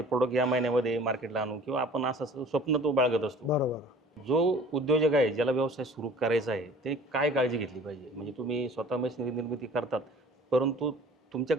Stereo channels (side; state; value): both; normal; correlation 0.48